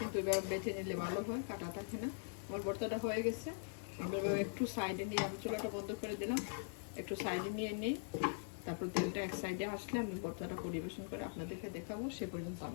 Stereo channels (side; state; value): right; silent; digital silence